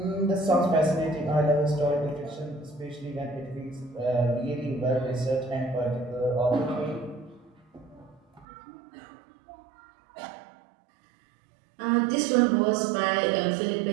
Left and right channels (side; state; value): left; drops out; at 8.5 s